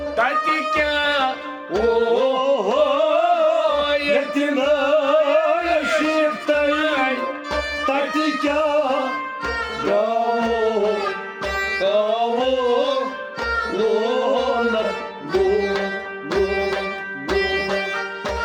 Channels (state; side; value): identical; both; correlation 1.00